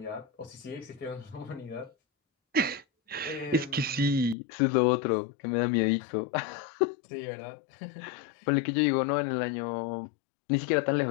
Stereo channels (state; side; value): drops out; right; at 4.4 s